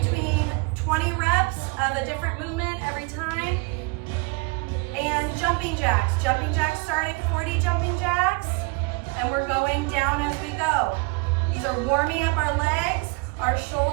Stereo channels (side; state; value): left; quieter; 27.4 dB